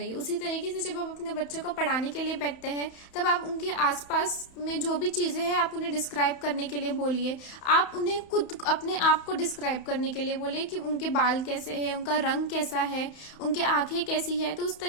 है। उसी तरीके से जब आप अपने बच्चों को पढ़ाने के लिए बैठते हैं तब आप उनके आसपास में जो भी चीजें हैं आप उन्हें डिस्क्राइब करने के लिए बोलिए। आप उन्हें खुद अपने आप को डिस्क्राइब करने के लिए बोलिए कि उनके बाल कैसे है, उनका रंग कैसा है, उनके आंखें कैसी है। तो उस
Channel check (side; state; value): right; late; 31 ms